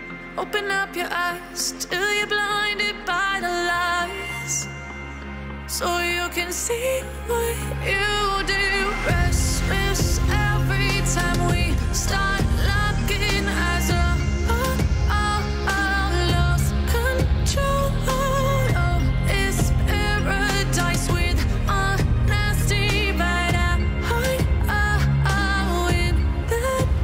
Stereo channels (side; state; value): both; identical; correlation 1.00